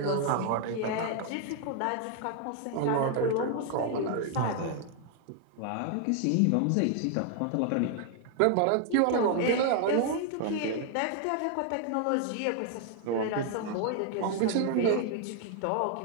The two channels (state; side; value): different; both; correlation 0.00